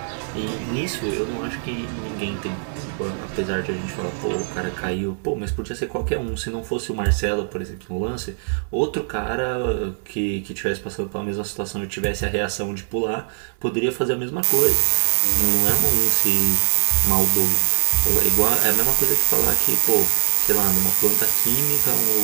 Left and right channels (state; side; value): silent; left; digital silence